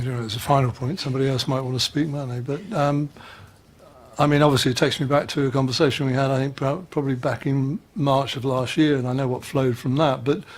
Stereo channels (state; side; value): identical; both; correlation 1.00